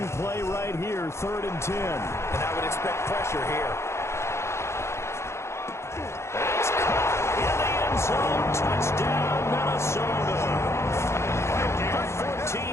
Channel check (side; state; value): right; late; 0.13 ms